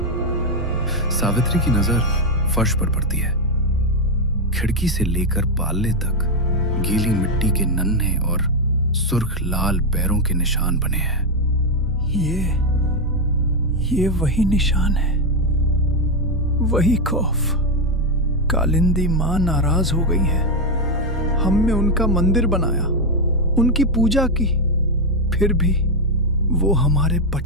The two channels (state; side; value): normal; both; correlation 0.06